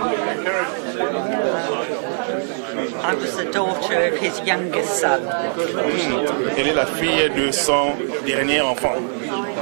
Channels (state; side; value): silent; left; 63 dB below the other